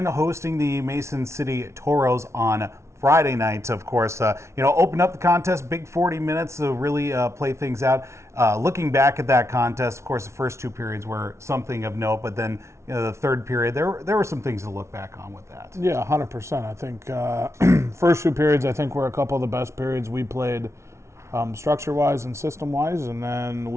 hosting the Mason City Toros on Friday night. Of course, opened up the contest, big 40 minutes to really play things out. Looking back at that contest, of course, the first two periods were something of note, but then the third period, there were some things to look back on with that. Yeah, 100%. I think first two periods, I think, were a couple of the best periods we played structure-wise and system-wise, and then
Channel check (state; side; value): late; left; 0.13 ms